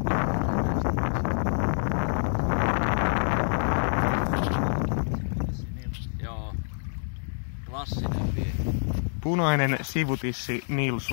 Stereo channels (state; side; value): silent; right; digital silence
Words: Joo. Klassinen vie. Punainen sivutissi